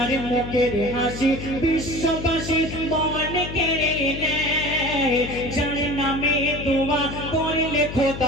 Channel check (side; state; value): left; noise; hum, 8 dB below the sound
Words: মুখের হাসি বিশ্ববাসী মন কেড়ে নেয়, যার নামে দোয়া করলে